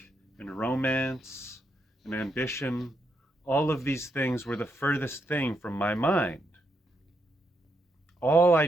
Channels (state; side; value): normal; both; correlation 0.79